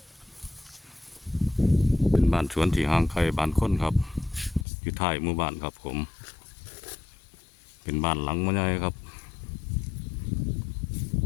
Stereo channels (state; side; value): drops out; right; at 4.7 s